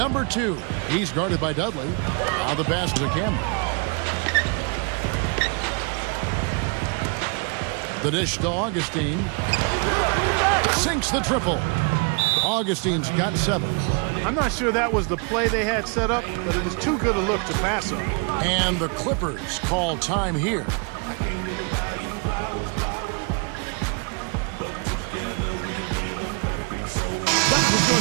2. He's guarded by Dudley. Now the pass to Cameron. The dish to Augustine. Sinks the triple. Augustine's got 7. I'm not sure that was the play they had set up, but it was too good a look to pass up. And the Clippers call time here.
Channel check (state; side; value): quieter; left; 35.6 dB